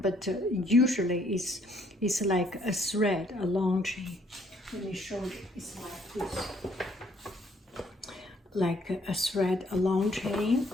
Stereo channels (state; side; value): normal; both; correlation 0.65